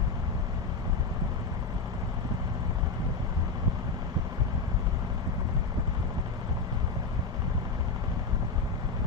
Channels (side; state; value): right; quieter; 4.1 dB